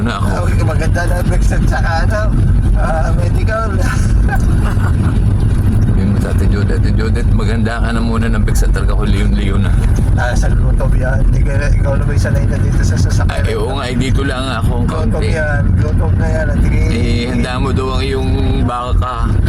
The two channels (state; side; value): identical; both; correlation 1.00